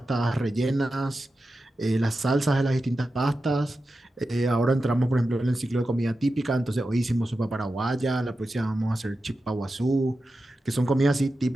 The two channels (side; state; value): both; normal; correlation 0.91